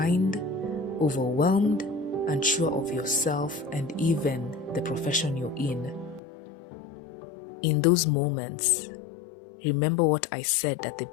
overwhelmed, unsure of yourself and even the profession you're in. In those moments, remember what I said at the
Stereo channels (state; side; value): drops out; right; at 6.2 s